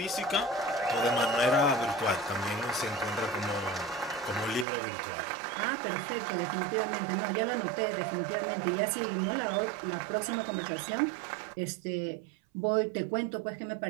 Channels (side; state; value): left; drops out; at 4.7 s